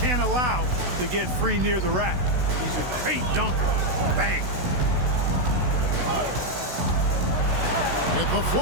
allow to get free near the rack. He's a great dunker. Bang. With the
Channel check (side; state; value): left; late; 16 ms